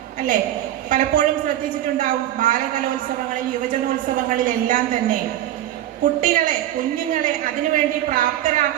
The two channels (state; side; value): quieter; left; 12.9 dB